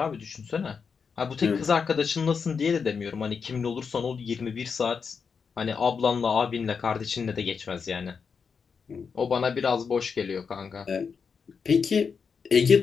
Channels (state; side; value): quieter; right; 5.9 dB